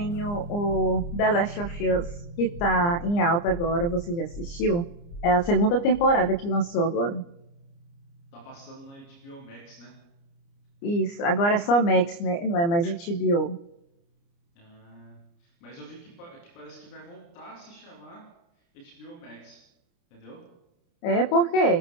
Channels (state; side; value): late; right; 29 ms